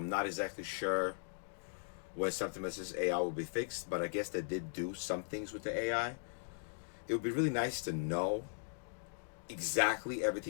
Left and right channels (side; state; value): right; silent; digital silence